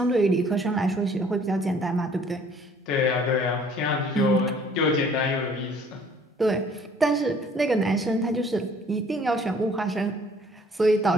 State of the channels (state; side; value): normal; both; correlation 0.57